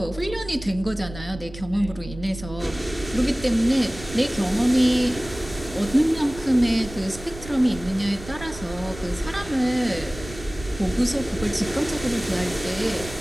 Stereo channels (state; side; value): noise; right; rumble, 14 dB below the sound